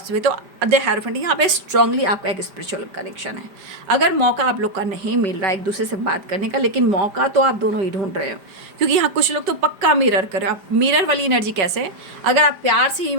भी, तो द हेरोफेंट, यहाँ पे स्ट्रांगली आपका एक स्पिरिचुअल कनेक्शन है। अगर मौका आप लोग का नहीं मिल रहा है एक दूसरे से बात करने का, लेकिन मौका तो आप दोनों ही ढूंढ रहे हो, क्योंकि यहाँ कुछ लोग तो पक्का मिरर कर रहे हो। आप मिरर वाली एनर्जी कैसे है, अगर आप प्यार से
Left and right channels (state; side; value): late; left; 5.0 ms